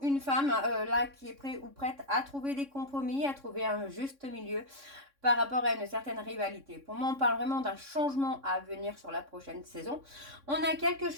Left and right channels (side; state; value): left; late; 3.6 ms